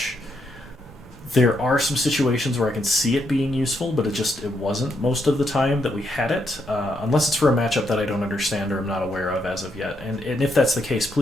There are some situations where I can see it being useful, but it wasn't most of the time that we had it, unless it's for a matchup that I don't understand or I'm not aware of as of yet. And if that's the case,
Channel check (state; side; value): normal; both; correlation 0.79